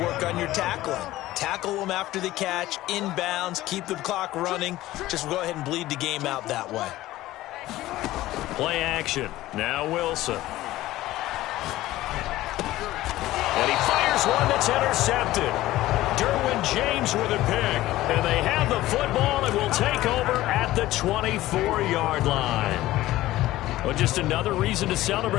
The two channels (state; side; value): quieter; right; 16.1 dB